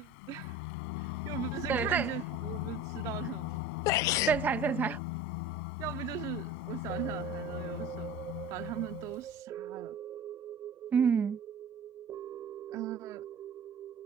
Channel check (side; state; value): both; normal; correlation 0.37